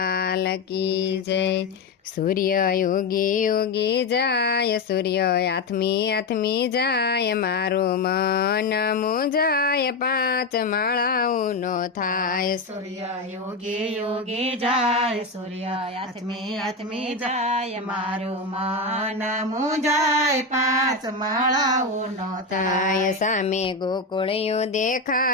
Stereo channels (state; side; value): quieter; right; 3.6 dB